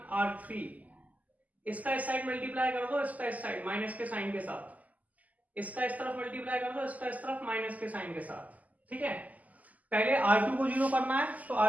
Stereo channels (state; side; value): late; left; 0.076 ms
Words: R3। इसका इस साइड मल्टीप्लाई कर दो, इसका इस साइड माइनस के साइन के साथ, इसका इस तरफ मल्टीप्लाई कर दो, इसका इस तरफ माइनस के साइन के साथ। ठीक है, पहले R2 को 0 करना है तो